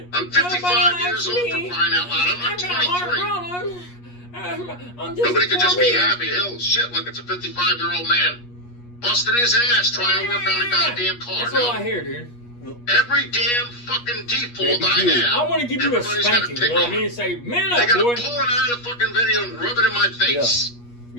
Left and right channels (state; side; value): late; right; 8.4 ms